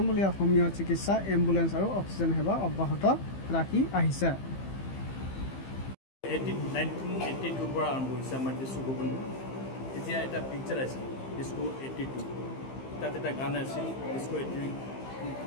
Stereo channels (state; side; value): late; right; 15 ms